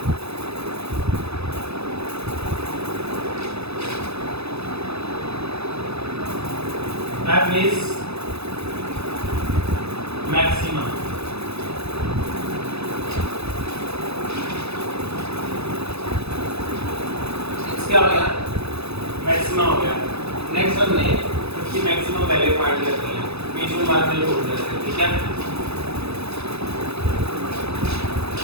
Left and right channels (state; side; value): late; left; 0.79 ms